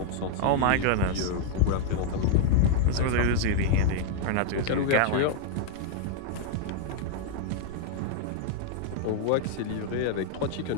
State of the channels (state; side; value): different; both; correlation -0.01